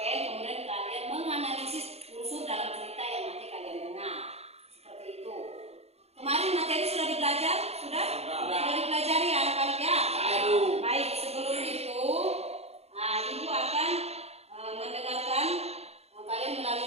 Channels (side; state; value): left; late; 0.30 ms